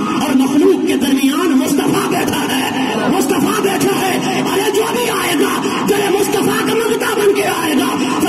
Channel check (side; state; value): both; identical; correlation 1.00